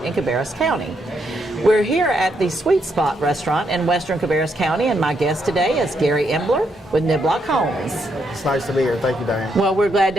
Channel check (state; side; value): normal; both; correlation 0.77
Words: in Cabarrus County. We're here at the Sweet Spot restaurant in western Cabarrus County, and my guest today is Gary Embler with Niblock Homes. It's nice to be here. Thank you, Diane. Well, we're glad